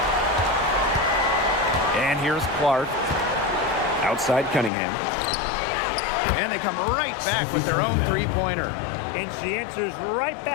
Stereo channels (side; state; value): right; drops out; at 4.7 s